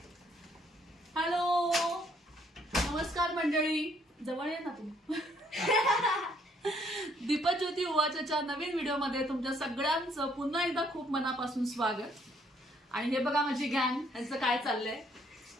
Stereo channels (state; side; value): normal; both; correlation 0.67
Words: Hello नमस्कार मंडळी. जवळ ये ना तू. दीपज्योती उवाचच्या नवीन व्हिडिओमध्ये तुमच्या सगळ्यांचं पुन्हा एकदा खूप मनापासून स्वागत. आणि हे बघा माझी गँग, यांचं काय चाललंय.